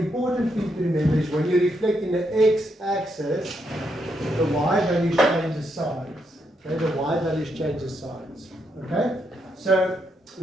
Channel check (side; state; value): both; normal; correlation 0.79